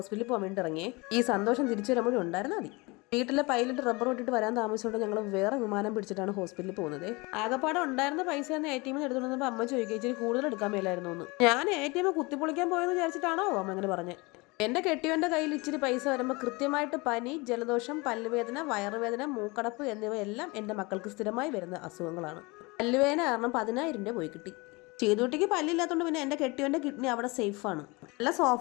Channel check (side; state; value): right; quieter; 25.7 dB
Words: പോകാൻ വേണ്ടി ഇറങ്ങിയേ. ഈ സന്തോഷം തിരിച്ചു വരുമ്പോഴും ഉണ്ടായിരുന്നാൽ മതി. വീട്ടിലെ പൈലറ്റ് റബ്ബർ വിട്ടിട്ട് വരാൻ താമസിച്ചുകൊണ്ട് ഞങ്ങൾ വേറെ വിമാനം പിടിച്ചിട്ടാണ് ഹോസ്പിറ്റലിൽ പോകുന്നത്. ആകപ്പാടെ ഉണ്ടായിരുന്ന പൈസ ഒന്ന് ATM എടുത്തുകൊണ്ടപ്പോൾ അമ്മ ചോദിക്കുക ഇച്ചിരി കൂടുതൽ എടുക്കാൻ മേലായിരുന്നു എന്ന്. ഞാൻ ATM കുത്തിപ്പൊളിക്കാൻ പോയെന്ന് വിചാരിച്ചിട്ടാണോ അമ്മ അങ്ങനെ പറഞ്ഞത്. എൻ്റെ കെട്ടിയവൻ്റെ കയ്യിൽ ഇച്ചിരി പൈസ വരുമ്പോൾ കൃത്യമായിട്ട് പനി, ജലദോഷം, പല്ലുവേദന, വയറുവേദന, മൂക്കടപ്പ് എന്നിവയെല്ലാം എൻ്റെ മക്കൾക്ക് സ്ഥിരമായി വരുന്ന അസുഖങ്ങളാണ്. പല്ലുവേദന കാരണം 10,000 രൂപ പോയി കിട്ടി. ചെയ്തുകുട്ടിക്ക് പല്ലില്ലാത്തതുകൊണ്ട് പിന്നെ എൻ്റെ കെട്ടിയവൻ്റെ കിഡ്നി അവിടെ സേഫാണ്. നല്ല